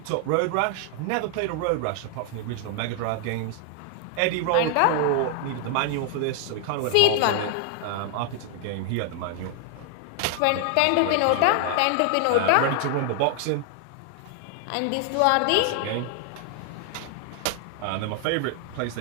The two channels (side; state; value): both; different; correlation 0.00